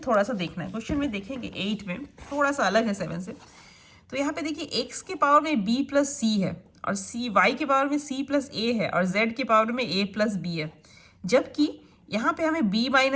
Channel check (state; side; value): identical; both; correlation 1.00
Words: सा देखना है। क्वेश्चन में देखेंगे 8 में थोड़ा सा अलग है 7 से। तो यहाँ पे देखिए x के पावर में b प्लस सी है, और y के पावर में c प्लस ए है, और z के पावर में a प्लस बी है, जबकि यहाँ पे हमें b